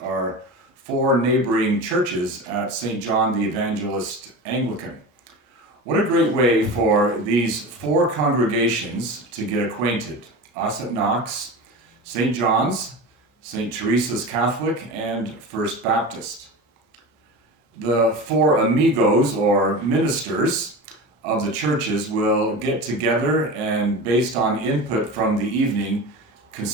4 neighboring churches at St. John the Evangelist Anglican. What a great way for these 4 congregations to get acquainted. Us at Knox, St. John's, St. Teresa's Catholic, and First Baptist. The 4 amigos, or ministers, of the churches will get together and, based on input from the evening,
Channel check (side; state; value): both; normal; correlation 0.29